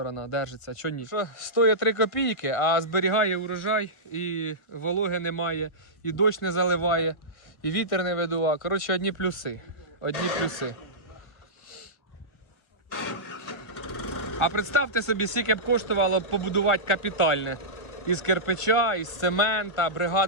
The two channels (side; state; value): right; late; 1.3 ms